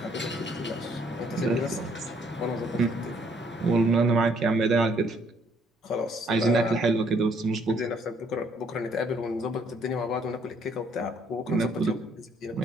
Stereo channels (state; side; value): normal; both; correlation 0.66